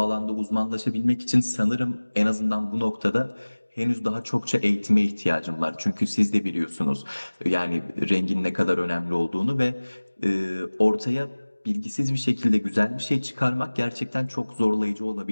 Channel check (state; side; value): inverted; both; correlation -1.00